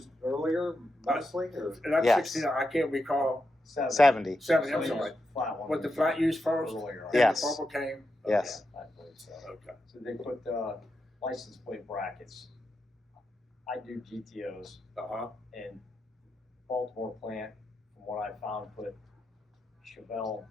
earlier, mostly, or? And that's Yes. 69. I can't recall. 70? 70, I'm So sorry. the flat one Was the was flat used first? earlier, Then Yes. the bubble came? Yes. I believe so. Okay. So they put the license plate brackets. I do GTOs, Uh-huh. and Baltimore plant, from what I found, put Chevelle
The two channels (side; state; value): both; normal; correlation 0.86